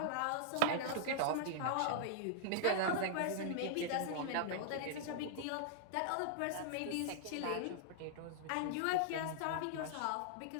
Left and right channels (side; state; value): both; different; correlation -0.01